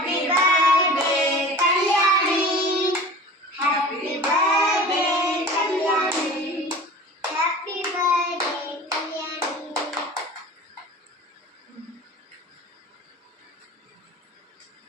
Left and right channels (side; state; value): both; normal; correlation 0.39